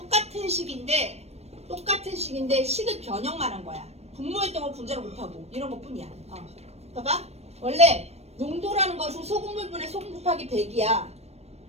식인데 식을 변형만 한 거야. 분모했던 분자를 못하고 이런 것뿐이야. 봐봐. 원래 농도라는 것은 소금물분의 소금 곱하기 100이야.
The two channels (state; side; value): late; left; 0.31 ms